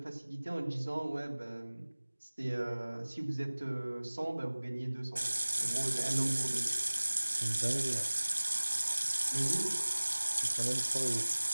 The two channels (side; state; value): both; inverted; correlation -1.00